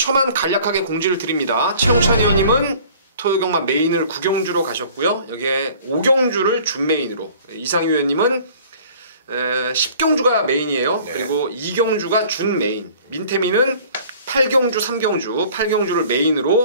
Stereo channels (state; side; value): inverted; both; correlation -0.50